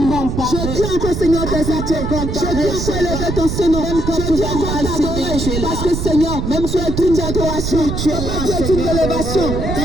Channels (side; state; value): right; noise; rumble, 3 dB below the sound